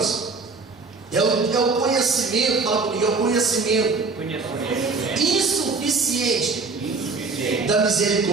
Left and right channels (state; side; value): quieter; left; 4.1 dB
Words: é o conhecimento, fala comigo, é o conhecimento insuficiente da